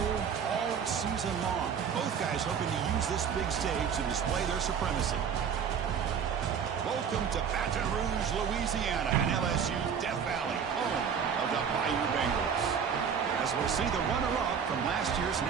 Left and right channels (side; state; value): left; quieter; 7.2 dB